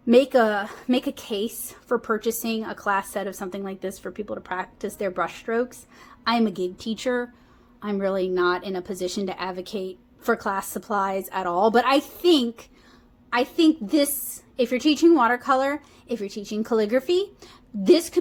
make a case for purchasing a class set of something like this for people to practice their brush strokes. I am a gig teacher. I'm really not in a position to advocate for class supplies at all, but I think this, if you're teaching watercolor, if you're teaching calligraphy, this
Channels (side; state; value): both; identical; correlation 1.00